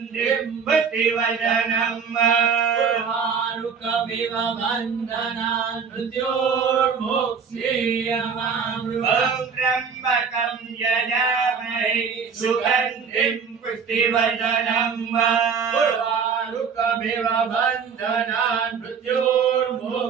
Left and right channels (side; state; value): left; quieter; 6.2 dB